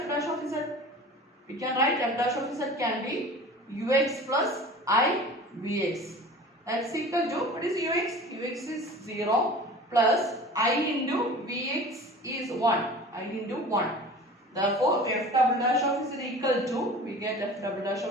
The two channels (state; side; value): normal; both; correlation 0.40